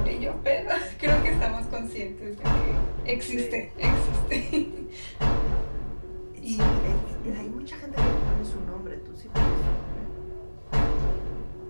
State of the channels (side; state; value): both; inverted; correlation -1.00